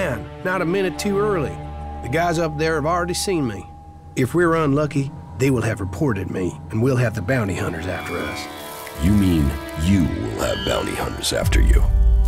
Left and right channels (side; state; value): both; identical; correlation 1.00